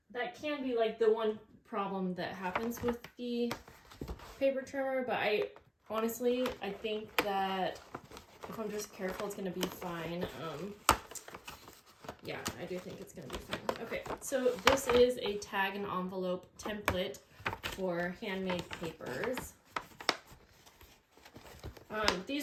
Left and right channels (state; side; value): identical; both; correlation 1.00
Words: can be like the one problem that happens with the paper trimmer, but I think that if I'm just careful, it's gonna be fine. Yeah, I do think it's gonna be fine. Okay, so this is a tag and envelope template for handmade papers.